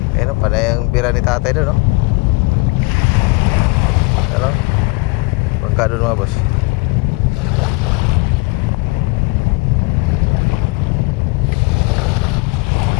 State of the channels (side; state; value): right; quieter; 25.9 dB